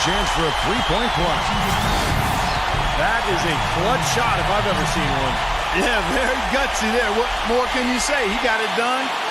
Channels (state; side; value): identical; both; correlation 1.00